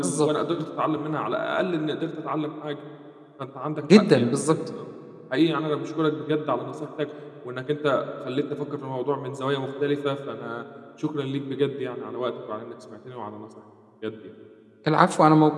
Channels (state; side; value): identical; both; correlation 1.00